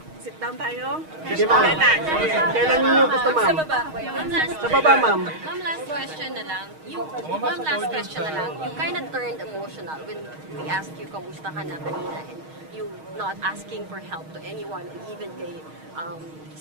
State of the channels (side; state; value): left; late; 6.4 ms